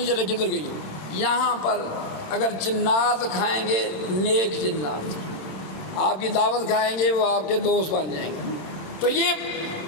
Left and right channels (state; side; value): late; right; 26 ms